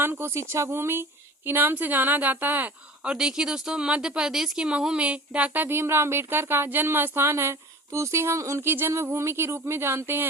को शिक्षा भूमि के नाम से जाना जाता है। और देखिए दोस्तों मध्य प्रदेश के महू में डॉक्टर भीमराव अम्बेडकर का जन्म स्थान है तो उसे हम उनकी जन्मभूमि के रूप में जानते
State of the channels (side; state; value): both; normal; correlation 0.40